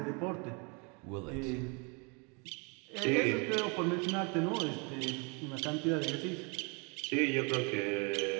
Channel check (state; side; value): quieter; left; 32.5 dB